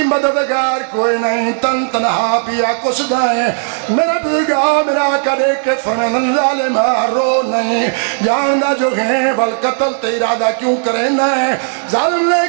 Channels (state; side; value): silent; left; digital silence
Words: مددگار کوئی نہیں تن تنہا پیا کس دائیں میرا بزرگا میرا کرے کہ فرمین ظالمہ رو نہیں جاندہ جو ہیں بل قتل تیرادہ کیوں کرے نہیں ظالم نے